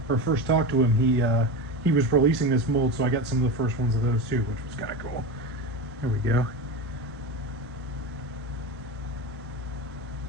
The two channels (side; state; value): both; normal; correlation 0.23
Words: or first talked to him. He was releasing this mold, so I got some of the first ones of those too, which was kind of cool. There we go.